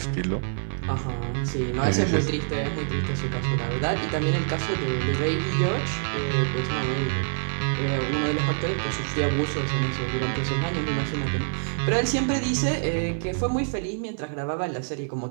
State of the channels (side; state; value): left; silent; 56 dB below the other